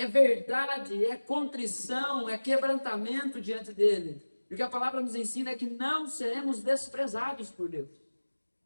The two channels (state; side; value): inverted; both; correlation -1.00